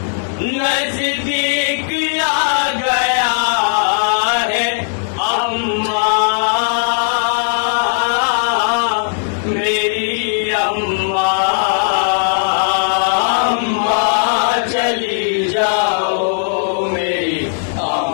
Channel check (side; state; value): right; silent; digital silence